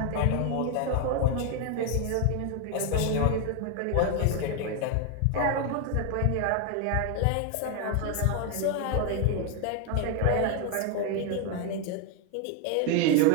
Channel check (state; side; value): different; both; correlation 0.01